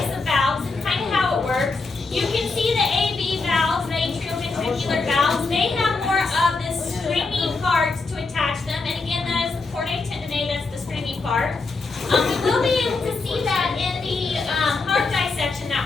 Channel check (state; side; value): quieter; right; 3.8 dB